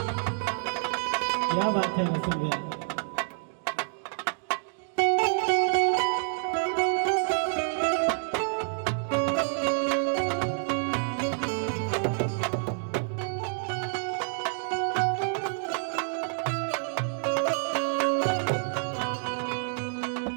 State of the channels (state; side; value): silent; left; 59 dB below the other